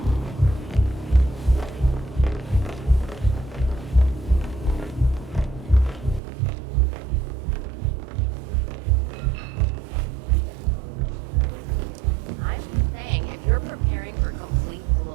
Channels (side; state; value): left; drops out; at 6.2 s